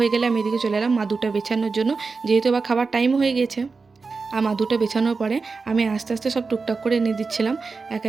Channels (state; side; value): quieter; left; 4.4 dB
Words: গেলে আমি এদিকে চলে এলাম মাদুটা বেছানোর জন্য, যেহেতু এবার খাবার টাইম হয়ে গেছে। আর মাদুটা বেছানোর পরে আমি আস্তে আস্তে সব টুকটাক করে এনে দিচ্ছিলাম এক